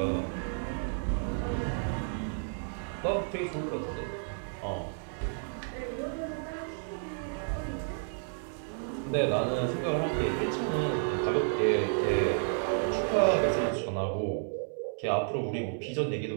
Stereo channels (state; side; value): silent; left; 57 dB below the other